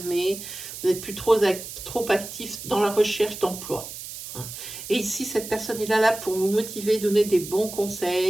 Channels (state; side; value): noise; right; hiss, 11 dB below the sound